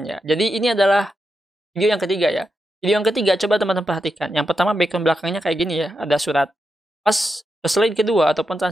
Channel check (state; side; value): normal; both; correlation 0.86